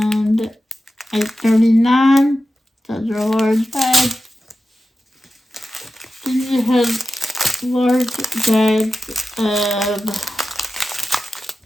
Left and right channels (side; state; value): both; normal; correlation 0.93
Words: 839. Those are large bags. Then you have large bags of